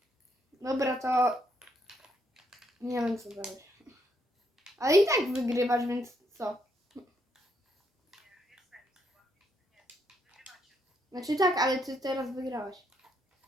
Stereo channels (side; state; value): both; normal; correlation 0.75